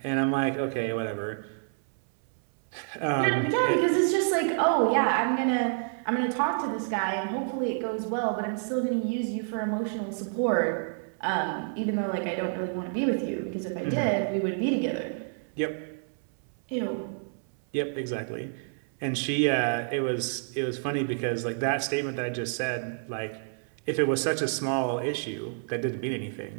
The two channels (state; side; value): silent; left; 59 dB below the other